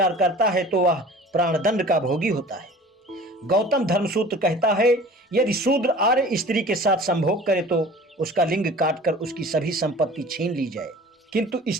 करता है तो वह प्राणदंड का भोगी होता है। गौतम धर्मसूत्र कहता है, यदि शूद्र आर्य स्त्री के साथ संभोग करे तो उसका लिंग काटकर उसकी सभी संपत्ति छीन ली जाए, किंतु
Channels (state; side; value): normal; both; correlation 0.43